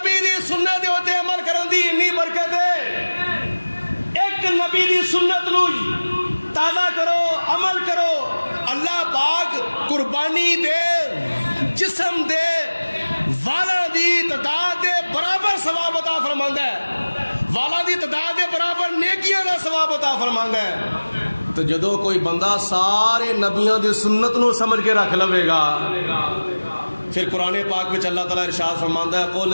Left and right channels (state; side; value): inverted; both; correlation -1.00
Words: دی سنت ہوتے عمل کرن دی انی برکت ہے. ایک نبی دی سنت نو تازہ کرو, عمل کرو, اللہ پاک قربانی دے جسم دے والا دی تعداد دے برابر ثواب عطا فرماندا ہے. والاں دی تعداد دے برابر نیکیاں دا ثواب عطا فرماندا ہے۔ تو جدو کوئی بندہ سارے نبیوں دی سنت نو سمجھ کے رکھ لوے گا، پھر قرآن پاک میں اللہ تعالیٰ ارشاد فرماندا ہے قل